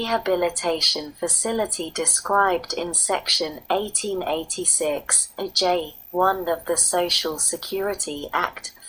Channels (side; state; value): both; identical; correlation 1.00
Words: facility described in Section 1886, J1 of the Social Security Act,